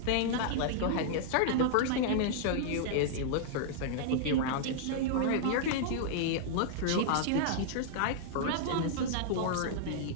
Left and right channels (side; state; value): both; different; correlation -0.01